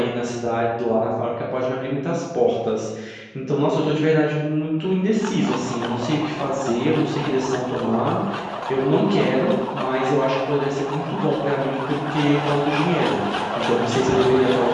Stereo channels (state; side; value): identical; both; correlation 1.00